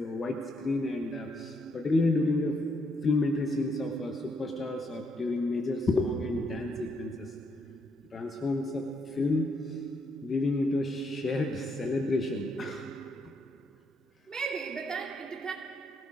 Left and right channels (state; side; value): normal; both; correlation 0.75